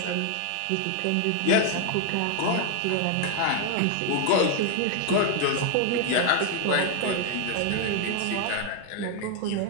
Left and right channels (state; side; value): different; both; correlation 0.00